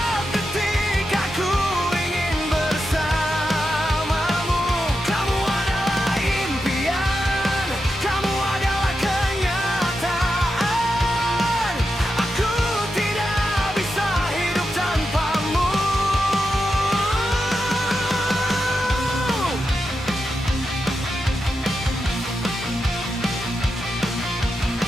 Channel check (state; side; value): normal; both; correlation 0.88